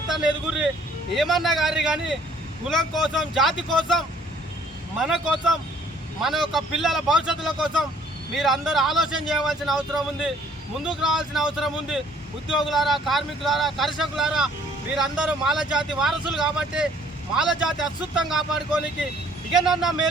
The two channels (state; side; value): normal; both; correlation 0.59